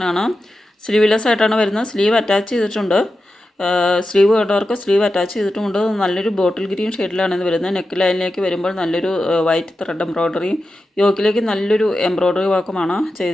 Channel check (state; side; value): normal; both; correlation 0.91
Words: സ്ലീവ്ലെസ് ആയിട്ടാണ് വരുന്നത്. സ്ലീവ് അറ്റാച്ച് ചെയ്തിട്ടുണ്ട്. സ്ലീവ് വേണ്ടവർക്ക് സ്ലീവ് അറ്റാച്ച് ചെയ്തിട്ടുമുണ്ട്. നല്ലൊരു ബോട്ടിൽ ഗ്രീൻ ഷെയ്ഡിലാണ് ഇത് വരുന്നത്. നെക്ക് ലൈനിലേക്ക് വരുമ്പോൾ നല്ലൊരു വൈറ്റ് ത്രെഡ് എംബ്രോയ്ഡറിയും യോക്കിലേക്ക് നല്ലൊരു എംബ്രോയ്ഡറി വർക്കുമാണ്